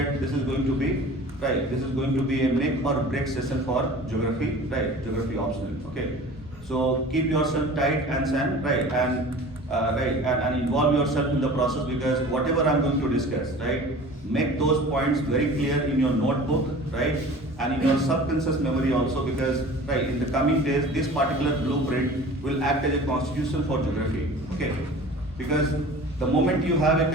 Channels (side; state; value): both; normal; correlation 0.41